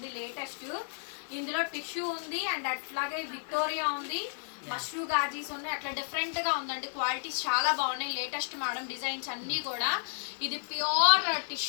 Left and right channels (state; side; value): silent; right; 56 dB below the other